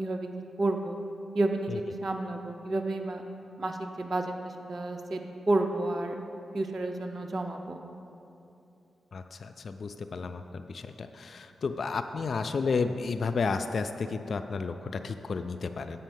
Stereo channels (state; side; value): normal; both; correlation 0.88